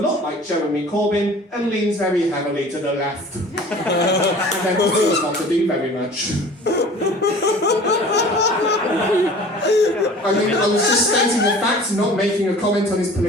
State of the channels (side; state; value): both; normal; correlation 0.44